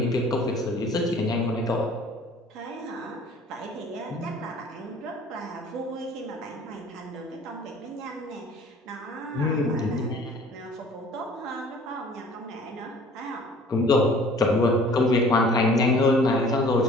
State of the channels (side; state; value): both; normal; correlation 0.50